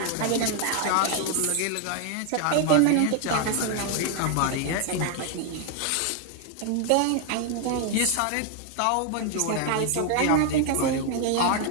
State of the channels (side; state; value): both; different; correlation 0.00